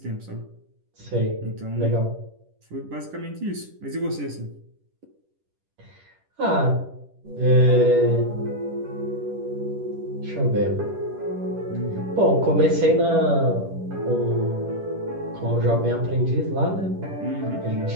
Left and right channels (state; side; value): late; left; 10 ms